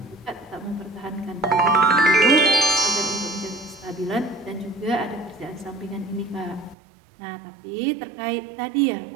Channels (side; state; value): left; drops out; at 6.8 s